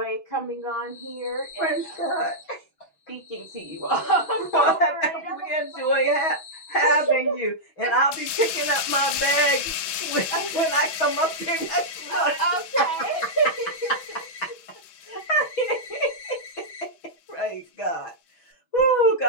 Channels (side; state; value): right; late; 6.2 ms